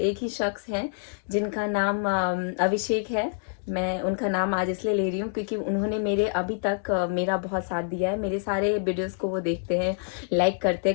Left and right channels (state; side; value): silent; right; digital silence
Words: ही शख्स हैं जिनका नाम अभिषेक है। मैं उनका नाम आज इसलिए ले रही हूँ क्योंकि उन्होंने मेरे अभी तक मेरा बहुत साथ दिया है, मेरे सारे वीडियोस को वो देखते हैं, लाइक करते